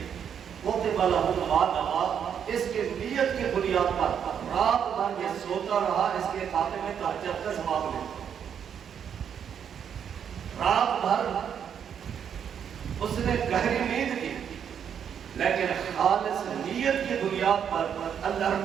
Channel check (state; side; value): quieter; left; 8.2 dB